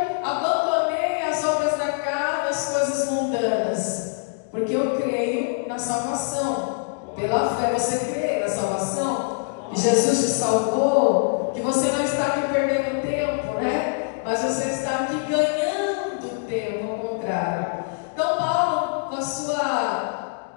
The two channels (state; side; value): silent; right; digital silence